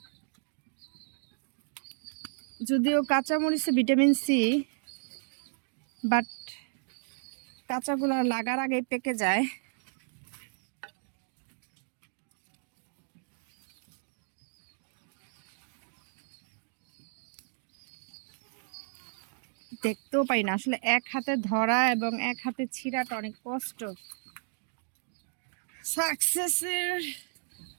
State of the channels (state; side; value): silent; left; digital silence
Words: যদিও কাঁচা মরিচে ভিটামিন সি, বাট কাঁচাগুলো লাগার আগে পেকে যায়। দেখতেও পাই না আসলে, এক হাতে ধরা এবং এক হাতে ছিঁড়াটা অনেক কষ্ট। সাকসেসের